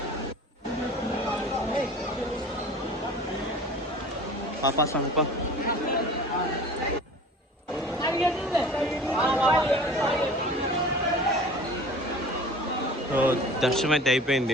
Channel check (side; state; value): both; normal; correlation 0.41